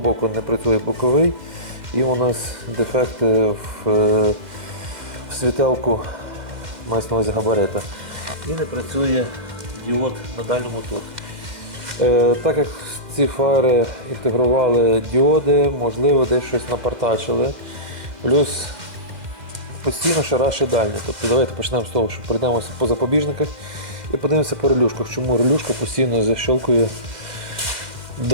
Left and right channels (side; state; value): left; late; 2.1 ms